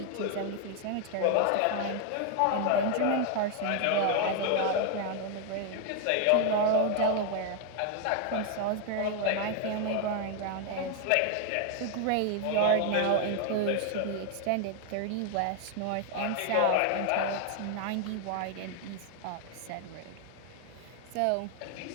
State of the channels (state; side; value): different; both; correlation 0.01